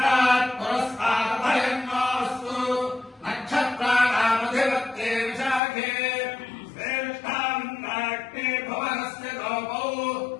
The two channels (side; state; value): right; drops out; at 5.6 s